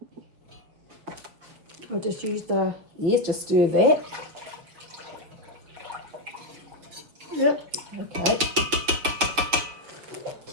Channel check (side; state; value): left; late; 6.7 ms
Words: I'll just use the... Yes, just stir that. Yep. Okay.